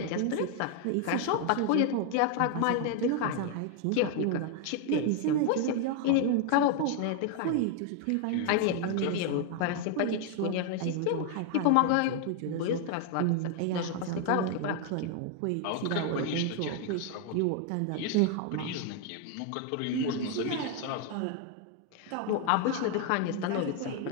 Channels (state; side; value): different; both; correlation 0.01